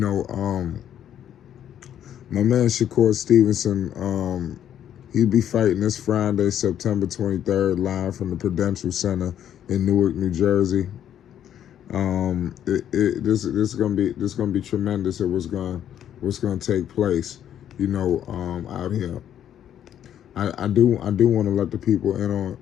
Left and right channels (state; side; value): quieter; right; 10.2 dB